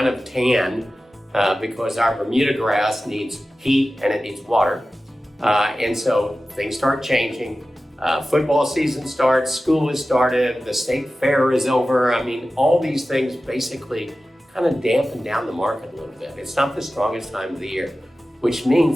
of tan because our Bermuda grass needs heat and it needs water. And so things start changing. Football season starts, school has started, the state fair is over. All these things basically kind of dampen down the market a little bit. It's not the strongest time of the year, which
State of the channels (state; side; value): normal; both; correlation 0.95